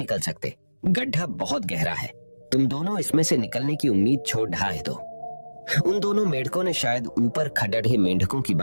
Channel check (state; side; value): inverted; both; correlation -1.00